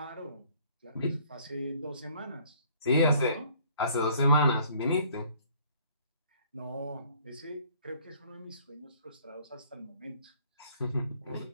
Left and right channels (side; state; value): both; inverted; correlation -0.59